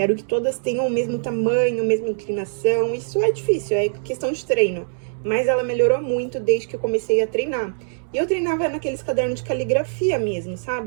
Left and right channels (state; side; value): silent; left; digital silence